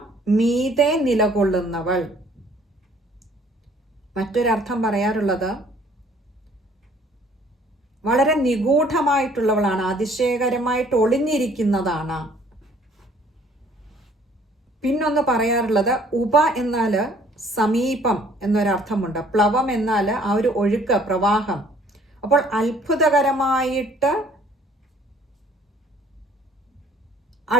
മീതെ നിലകൊള്ളുന്നവൾ. മറ്റൊരർത്ഥം പറയാറുള്ളത് വളരെ നിഗൂഢമായിട്ടുള്ളവളാണ്, അതിശയകരമായിട്ട് ഒളിഞ്ഞിരിക്കുന്നതാണ്. പിന്നൊന്ന് പറയാറുള്ളത് ഉപ എന്നാൽ സമീപം എന്നൊരർത്ഥമുണ്ട്. പ്ലവം എന്നാൽ ആ ഒരു ഒഴുക്ക്, പ്രവാഹം. അപ്പോൾ അത്ഭുതകരമായിട്ട്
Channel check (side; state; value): both; normal; correlation 0.58